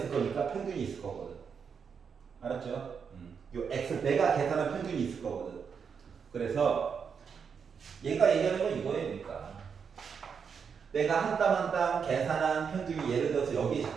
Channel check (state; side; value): quieter; left; 6.5 dB